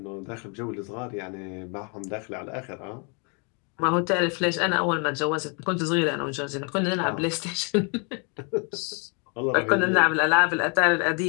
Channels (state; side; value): quieter; right; 35.6 dB